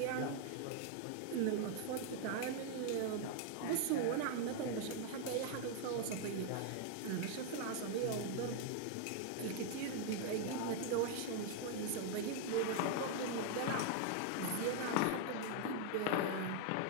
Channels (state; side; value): different; both; correlation 0.00